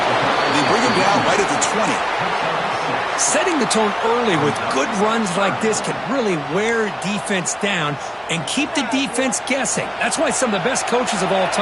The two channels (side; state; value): both; identical; correlation 1.00